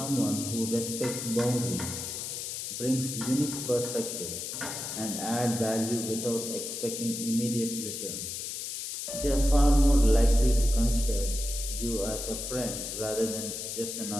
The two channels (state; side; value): noise; left; hiss, 5 dB below the sound